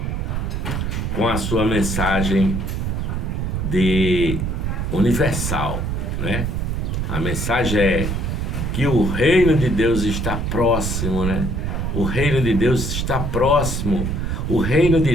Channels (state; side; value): noise; right; rumble, 1 dB below the sound